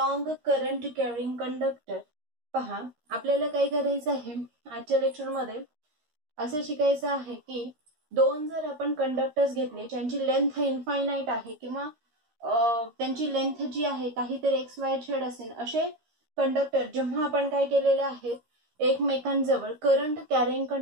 current carrying conductor पहा। आपल्याला काय करायचं आहे आजच्या लेक्चर मध्ये असं शिकायचं आहे की दोन जर आपण कंडक्टर्स घेतले ज्यांची लेंथ इनफायनाइट आहे किंवा त्यांची लेंथ जी आहे काहीतरी एक्स वाय झेड असेल असे कंडक्टर जेव्हा आपण काय केलेले आहेत एकमेकांजवळ करंट कॅरिंग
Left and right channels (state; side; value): late; left; 13 ms